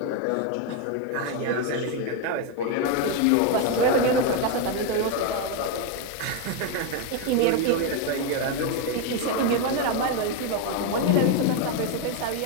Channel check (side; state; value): both; different; correlation 0.02